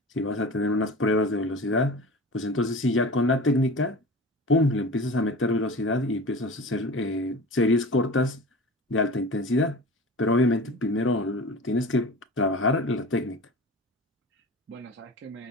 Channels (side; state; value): both; normal; correlation 0.35